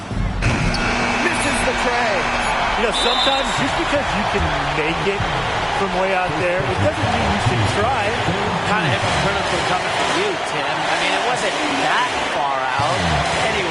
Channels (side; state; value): both; identical; correlation 1.00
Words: Misses the tray. You know, sometimes just because you can make it from way out there, it doesn't mean you should try. Kind of hypocritical coming from you, Tim. I mean, it wasn't that far out.